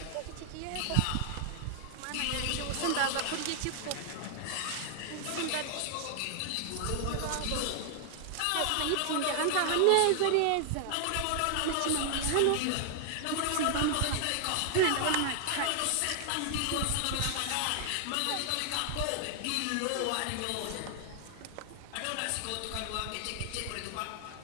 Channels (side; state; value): both; different; correlation 0.00